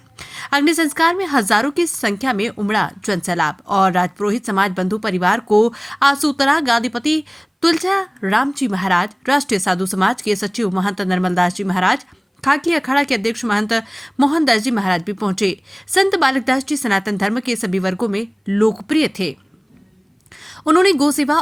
अग्नि संस्कार में हजारों की संख्या में उमड़ा जन सैलाब और राजपुरोहित समाज बंधु परिवार को आसूतरा गादीपति तुलजा राम जी महाराज, राष्ट्रीय साधु समाज के सचिव महंत निर्मलदास जी महाराज, खाकी अखाड़ा के अध्यक्ष महंत मोहनदास जी महाराज भी पहुंचे। संत बालकदास जी सनातन धर्म के सभी वर्गों में लोकप्रिय थे। उन्होंने गौ सेवा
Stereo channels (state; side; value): identical; both; correlation 1.00